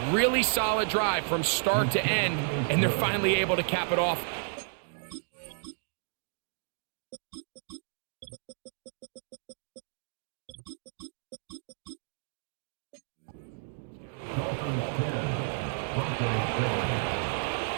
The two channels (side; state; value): left; silent; digital silence